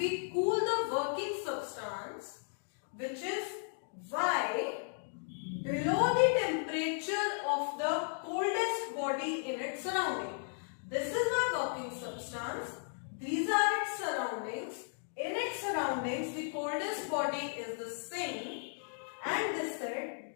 cool the working substance, which is Y, below the temperature of the coldest body in its surrounding. This is my working substance. These are its surroundings. In its surroundings, the coldest body is the sink, and they said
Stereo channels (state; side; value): silent; right; digital silence